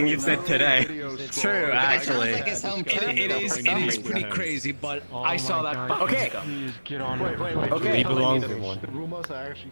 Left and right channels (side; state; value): both; inverted; correlation -1.00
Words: you've said today. True, actually. It is pretty crazy, but I saw that. Okay. Please get on it. Wait. Okay. He belongs in one. The rumors are actually